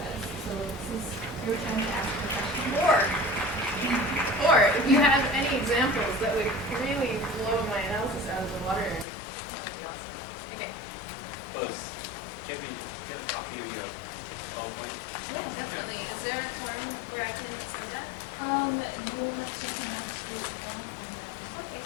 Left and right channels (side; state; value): right; drops out; at 9.1 s